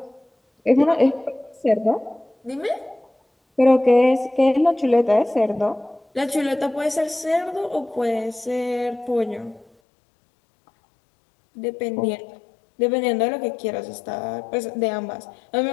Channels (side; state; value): right; drops out; at 9.7 s